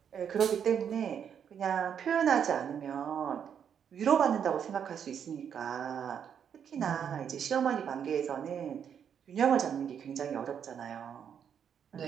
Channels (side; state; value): left; quieter; 8.1 dB